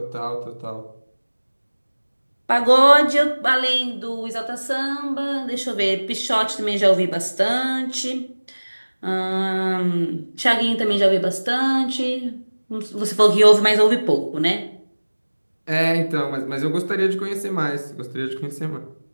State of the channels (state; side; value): inverted; both; correlation -1.00